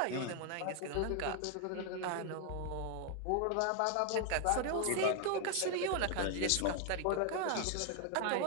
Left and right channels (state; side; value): different; both; correlation 0.00